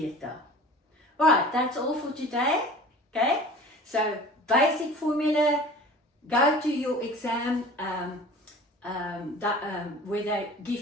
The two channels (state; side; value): normal; both; correlation 0.42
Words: Alright, that's all for today. Okay, so basic formula, go to your exam where they